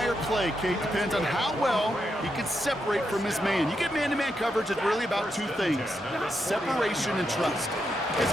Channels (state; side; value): normal; both; correlation 0.83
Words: play, Kate, depends on how well he can separate from his man. You get man-to-man coverage, it's really about 2 things, separation and trust. Because